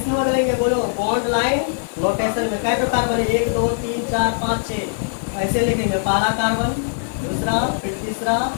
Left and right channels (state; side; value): silent; right; digital silence